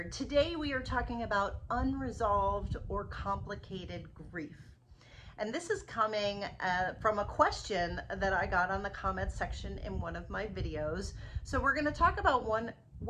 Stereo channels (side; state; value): both; identical; correlation 1.00